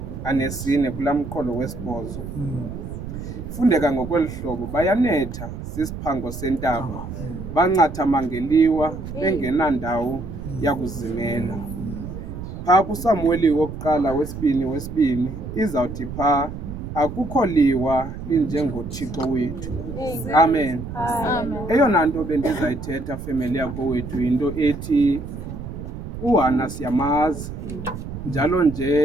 24 kulaa mqolo wesi-8. Fundeka ngokweli hlobo, bayanetha sisiphango sentaba, bancatha mangeliwa bengenandawo yakuzimela. Phaa kuSamuweli wokuqala wesibini izawuthi phaa akukho liwa linjengoThixo wethu. Amen. Eyona nto bendizayithetha family yakowethu yinto ethi uHana siyamazi, njalo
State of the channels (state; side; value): noise; right; rumble, 9 dB below the sound